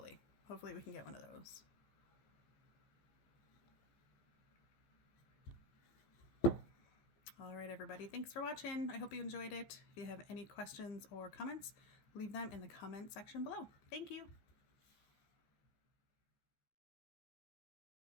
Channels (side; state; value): right; late; 14 ms